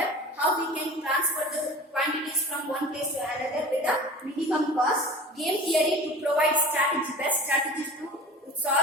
how we can transfer the quantities from one place to another with a minimum cost. Game theory to provide best strategies to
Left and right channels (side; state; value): both; normal; correlation 0.38